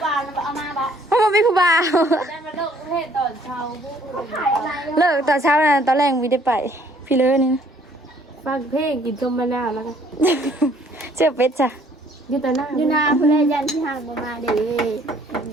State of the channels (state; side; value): normal; both; correlation 0.61